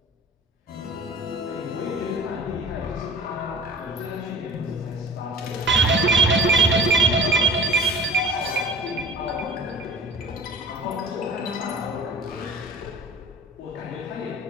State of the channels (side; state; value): both; normal; correlation 0.40